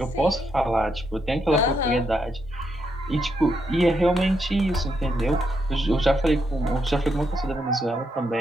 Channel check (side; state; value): both; normal; correlation 0.79